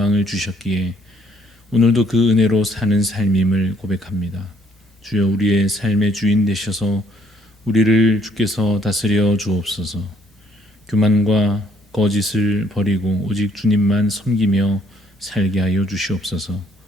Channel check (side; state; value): both; normal; correlation 0.66